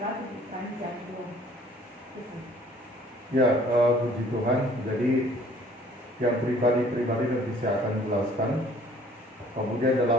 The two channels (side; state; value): both; normal; correlation 0.55